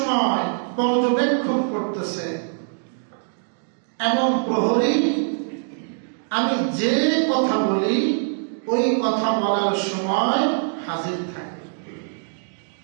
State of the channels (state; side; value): silent; left; digital silence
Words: পর্যবেক্ষণ করতেছে, এমন প্রহরী আমি যে কথা বলি ওই কথা বলার সময় হাজির থাকে।